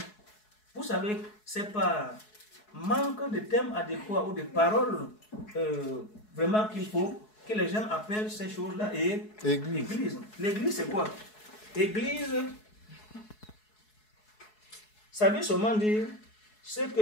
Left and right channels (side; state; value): right; late; 4.7 ms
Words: Vous savez, c'est pas manque de thèmes adéquats ou de paroles vraiment qu'il faut que les gens appellent ces choses-là et église. L'église, c'est quoi? Église, ça veut seulement dire ce